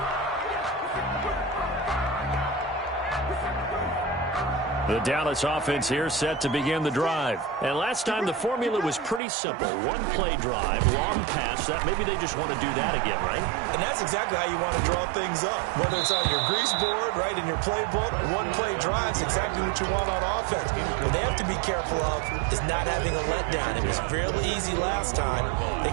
The Dallas offense here set to begin the drive. And last time the formula was pretty simple. One play drive, long pass. That maybe they just want to do that again, right? And that's exactly how you want to draw things up. Whether it's on your grease board, right, in your playbook, one play drive's exactly what you want on offense. What they have to be careful of is not having a letdown. It was real easy last time. They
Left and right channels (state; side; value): drops out; left; at 9.2 s